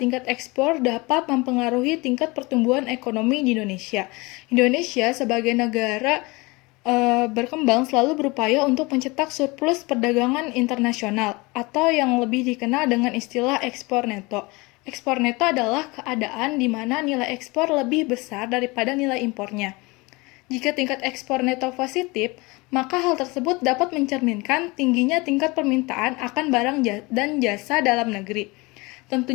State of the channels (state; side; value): quieter; right; 24.7 dB